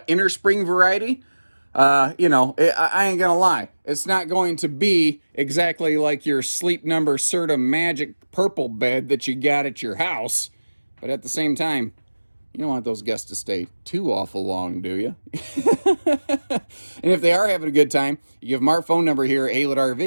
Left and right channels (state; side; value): inverted; both; correlation -1.00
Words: inner spring variety. You know, I ain't gonna lie. It's not going to be exactly like your Sleep Number Serta Magic purple bed that you got at your house. But at the same time, you don't want those guests to stay too awful long, do you? And if they are having a good time, you give them our phone number here at Haylett